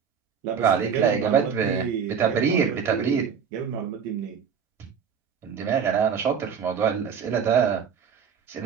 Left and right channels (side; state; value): left; quieter; 7.0 dB